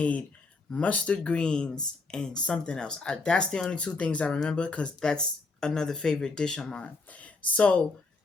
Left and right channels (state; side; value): quieter; right; 3.8 dB